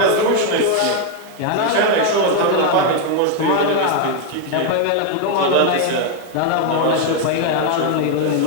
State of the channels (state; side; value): different; both; correlation 0.01